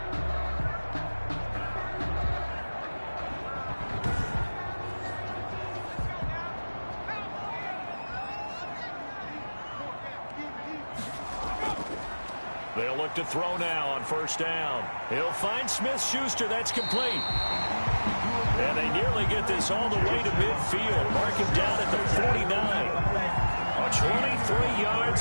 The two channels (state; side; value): inverted; both; correlation -1.00